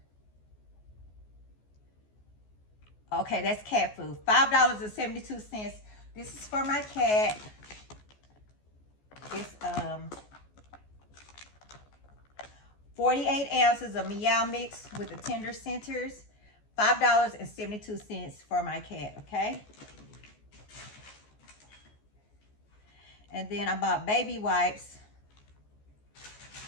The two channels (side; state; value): right; late; 14 ms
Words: Okay, that's cat food. $5.72. This is for my cat. It's 48 ounces of Meow Mix with the tender centers. $5.72 for my cat, okay? And then I bought baby wipes.